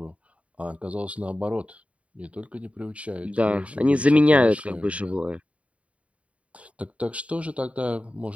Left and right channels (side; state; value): left; late; 0.065 ms